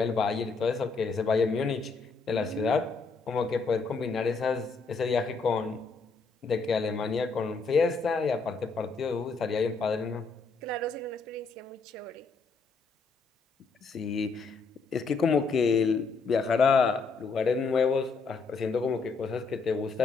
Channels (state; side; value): quieter; right; 4.4 dB